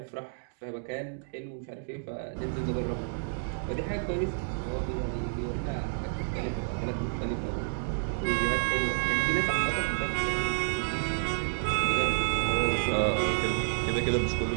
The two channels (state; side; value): silent; left; digital silence